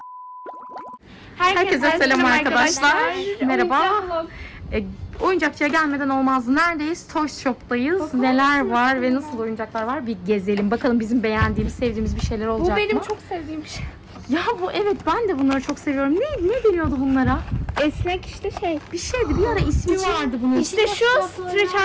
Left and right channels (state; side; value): identical; both; correlation 1.00